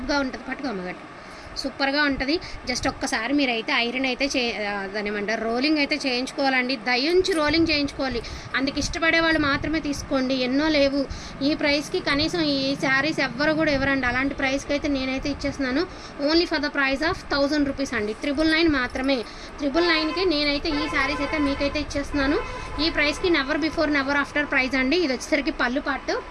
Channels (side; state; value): both; identical; correlation 1.00